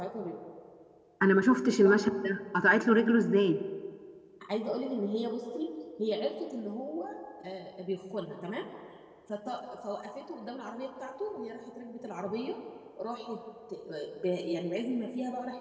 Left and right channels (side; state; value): both; identical; correlation 1.00